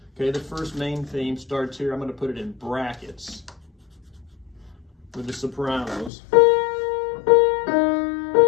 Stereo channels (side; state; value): right; drops out; at 6.1 s